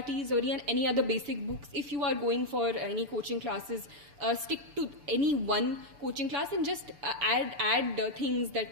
or any other basic books. If you are going for any coaching classes, stick to any one coaching class and just add things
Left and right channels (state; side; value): late; left; 6.9 ms